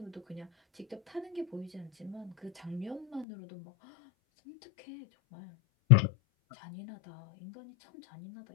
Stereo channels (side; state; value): right; drops out; at 3.2 s